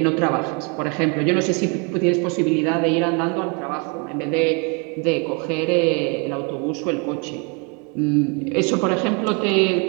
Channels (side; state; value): left; quieter; 33.7 dB